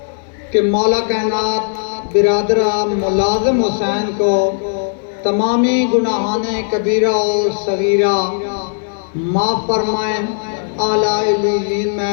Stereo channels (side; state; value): right; silent; digital silence